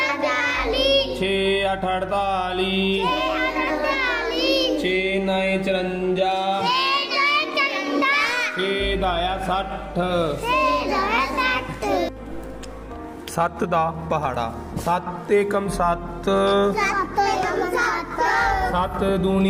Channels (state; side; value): identical; both; correlation 1.00